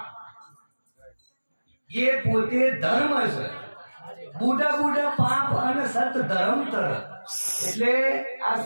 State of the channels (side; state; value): both; inverted; correlation -1.00